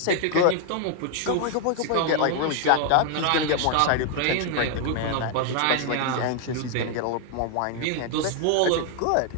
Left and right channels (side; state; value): both; different; correlation 0.00